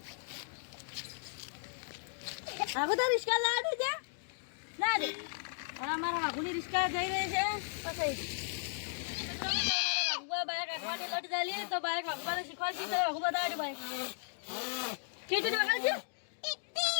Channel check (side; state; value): right; silent; digital silence